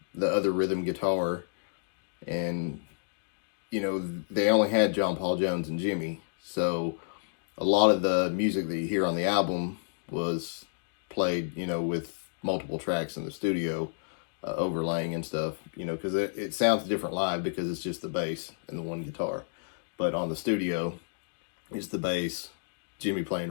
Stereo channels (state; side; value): silent; right; digital silence